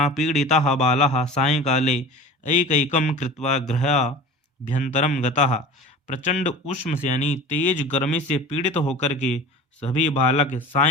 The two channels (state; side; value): normal; both; correlation 0.37